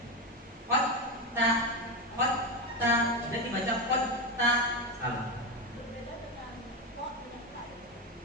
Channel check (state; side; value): normal; both; correlation 0.13